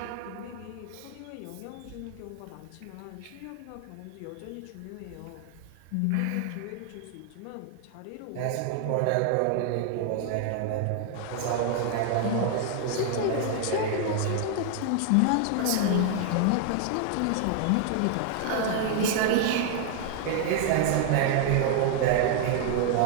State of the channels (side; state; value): both; different; correlation 0.00